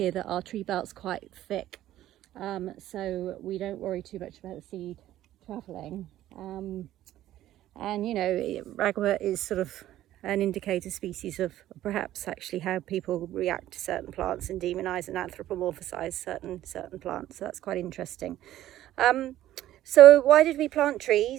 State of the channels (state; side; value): quieter; left; 13.5 dB